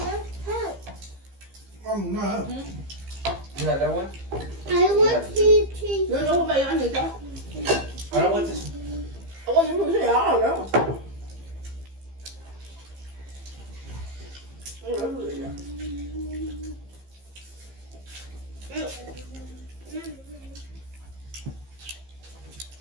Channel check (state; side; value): late; left; 15 ms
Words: No. You had that one? I want to Nó đâu vậy anh gì đó. I don't want this. Có những cái gì đó rồi đó.